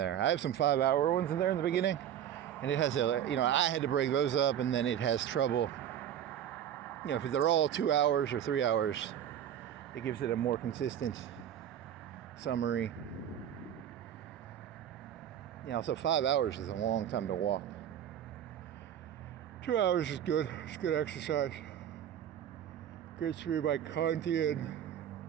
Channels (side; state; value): left; quieter; 10.1 dB